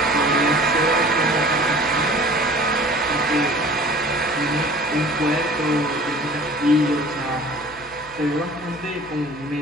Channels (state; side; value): noise; left; hum, 22 dB below the sound